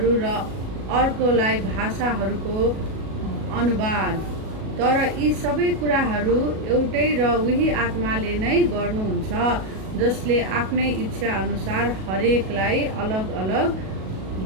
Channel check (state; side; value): late; left; 37 ms